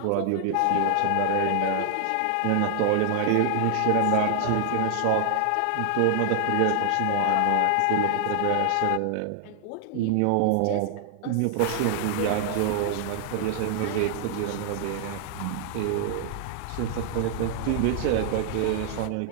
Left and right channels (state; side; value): different; both; correlation 0.00